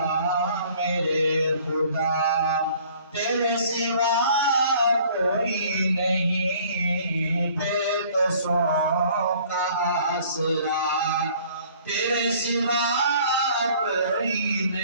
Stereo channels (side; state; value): both; inverted; correlation -0.54